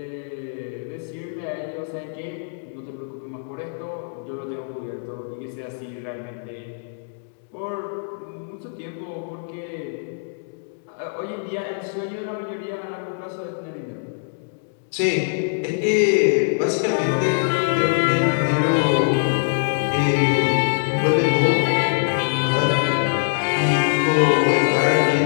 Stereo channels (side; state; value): right; silent; digital silence